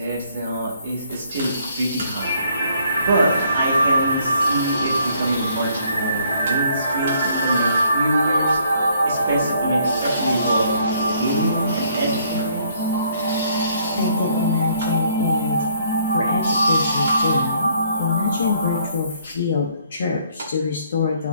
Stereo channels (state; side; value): inverted; both; correlation -0.65